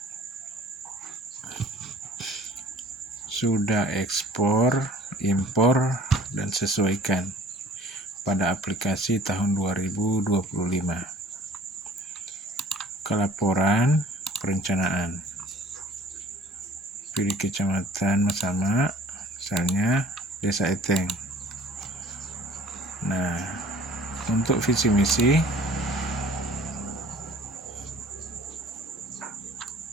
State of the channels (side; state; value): both; normal; correlation 0.51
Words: sudah ekspor, impor, dan sesuaikan pada aplikasi tahun 2025. Kelaporan perencanaan. Pilih kecamatan Masama, misalnya Desa Eteng. Nah, untuk visi misi